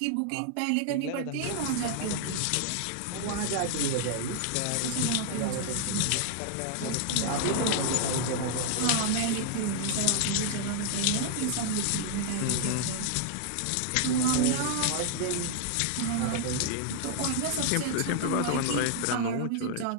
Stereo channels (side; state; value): both; different; correlation 0.00